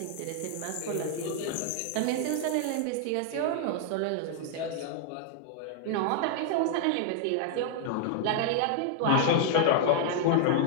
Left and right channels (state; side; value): different; both; correlation 0.00